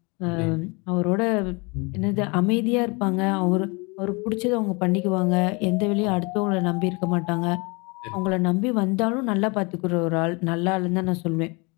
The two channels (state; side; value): quieter; right; 29.0 dB